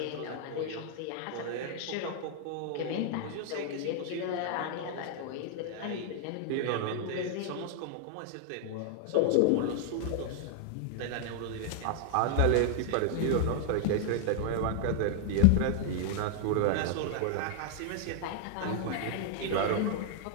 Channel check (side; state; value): both; different; correlation -0.01